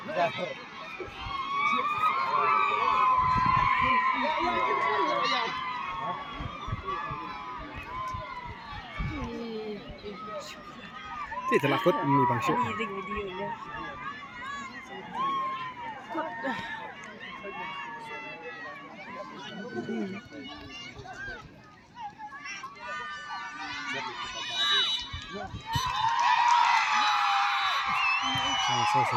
Itu lakut ini Bang Syuk.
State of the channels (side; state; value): both; identical; correlation 1.00